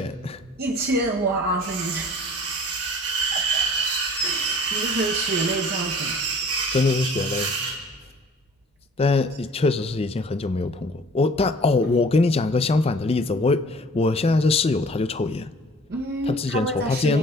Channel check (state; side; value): normal; both; correlation 0.50